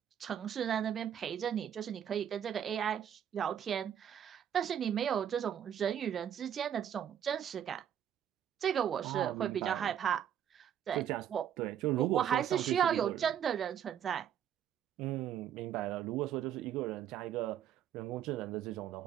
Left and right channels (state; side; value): quieter; left; 9.5 dB